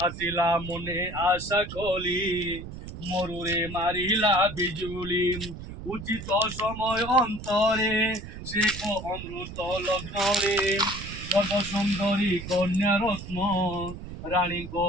আসিলা মনে আশা কলি মরুরে মারিলা বিজুলি উচিত সময় অন্তরে শেখ অমৃত লগ্নরে সর্বসুন্দরী কন্যা রত্ন রানীক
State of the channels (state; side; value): noise; right; rumble, 11 dB below the sound